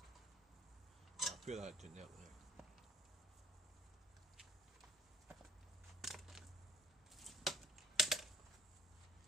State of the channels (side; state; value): both; normal; correlation 0.61